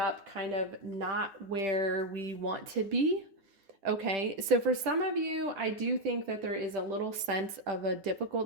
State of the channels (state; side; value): late; left; 9.7 ms